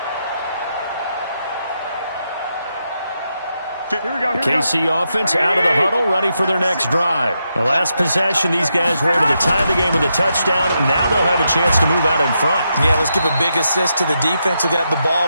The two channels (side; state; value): both; inverted; correlation -0.83